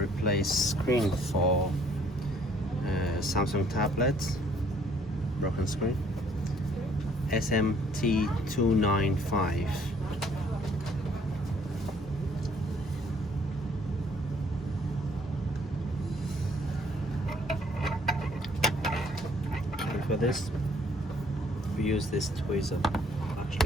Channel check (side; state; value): both; normal; correlation 0.61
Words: screen for Samsung tablets, broken screen, SMT295. And for this we use this tweezer.